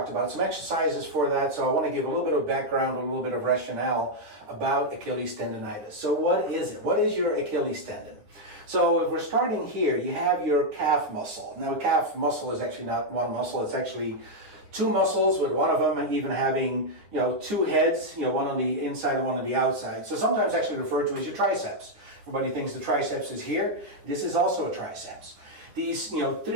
about some exercises for that, so I want to give a little bit of background, a little bit of rationale about Achilles tendonitis. So what is it? What is your Achilles tendon? So if we're starting here, you have your calf muscle. Now calf muscle is actually not one muscle, it's actually two muscles, with one of them even having, two heads, one on the inside and one on the outside. So sometimes actually referred to as your triceps. Everybody thinks the triceps is here. This is also a triceps. These,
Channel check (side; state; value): left; late; 9.7 ms